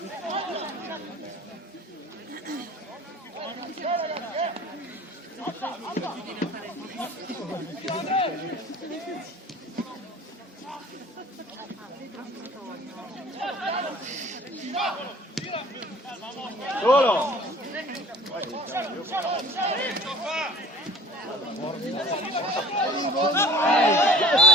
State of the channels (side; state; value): both; normal; correlation 0.49